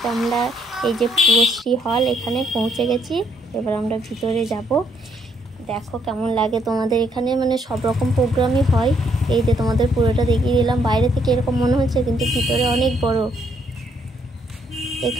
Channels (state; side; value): normal; both; correlation 0.71